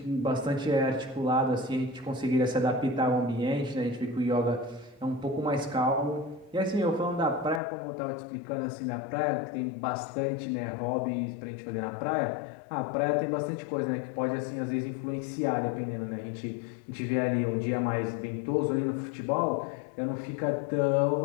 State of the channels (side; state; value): right; drops out; at 7.6 s